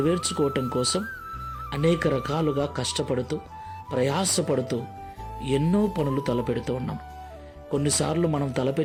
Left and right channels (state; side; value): identical; both; correlation 1.00